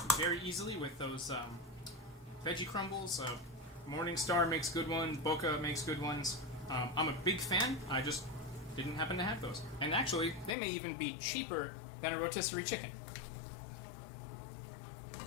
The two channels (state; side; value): drops out; right; at 10.6 s